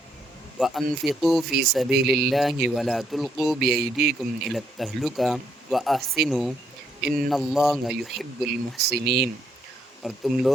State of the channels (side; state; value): both; normal; correlation 0.73